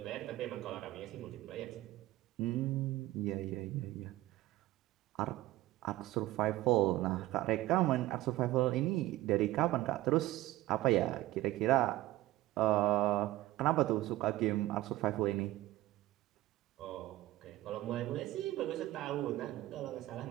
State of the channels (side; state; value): left; quieter; 16.5 dB